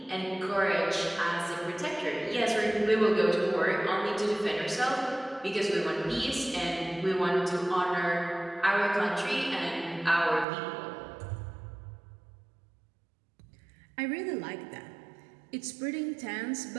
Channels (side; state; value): left; drops out; at 10.5 s